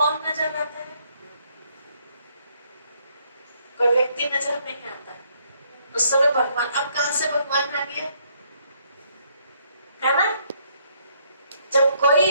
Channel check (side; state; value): both; inverted; correlation -0.70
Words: नजर आता है? कोई व्यक्ति नजर नहीं आता है, उस समय भगवान। अब कहां से भगवान आ गया, है ना। जब